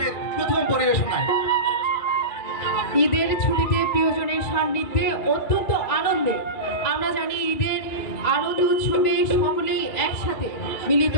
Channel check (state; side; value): late; right; 2.9 ms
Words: প্রথম পরিবেশনায়। ঈদের ছুটিতে প্রিয়জনের সান্নিধ্যে অত্যন্ত আনন্দে আমরা জানি ঈদের আনন্দ উৎসবে সকলেই একসাথে মিলিত